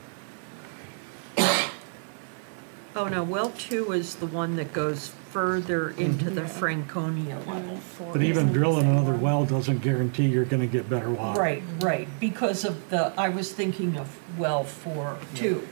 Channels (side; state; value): left; silent; digital silence